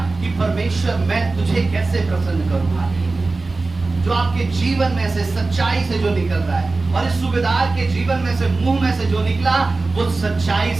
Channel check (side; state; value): left; quieter; 3.6 dB